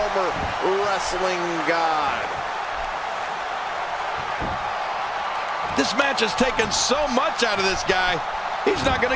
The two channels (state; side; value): identical; both; correlation 1.00